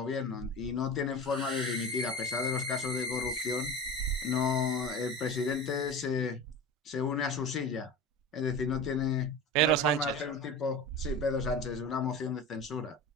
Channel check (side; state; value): both; normal; correlation 0.30